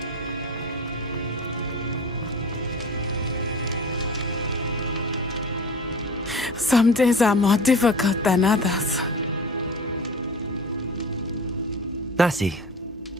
Some days are more difficult than others. Natty,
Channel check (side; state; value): both; normal; correlation 0.36